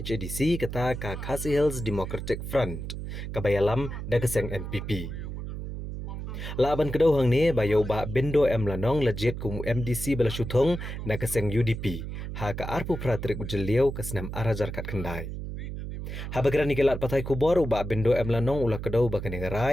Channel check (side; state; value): right; noise; hum, 7 dB below the sound